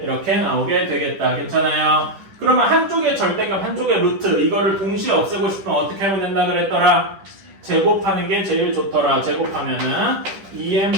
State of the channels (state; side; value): late; left; 10 ms